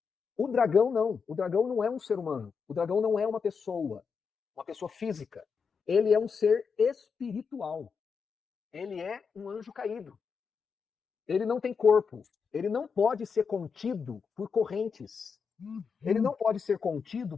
O dragão não. O dragão não é um ser humano. O dragão não é uma pessoa física. Ele é um ser espiritual. Ele é um anjo caído. Ele não tem corpo. Ele não pode ser contido por correntes. Ele não pode ser contido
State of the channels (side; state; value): right; quieter; 5.8 dB